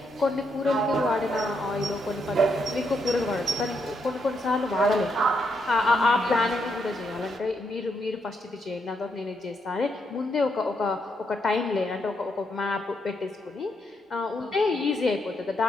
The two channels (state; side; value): normal; both; correlation 0.78